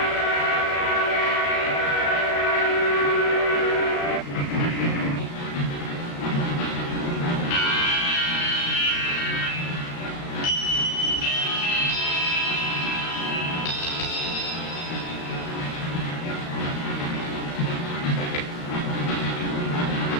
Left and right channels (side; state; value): right; late; 35 ms